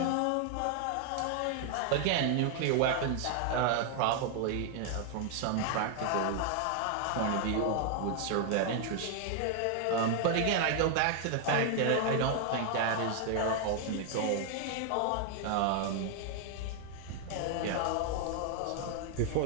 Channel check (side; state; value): both; different; correlation 0.00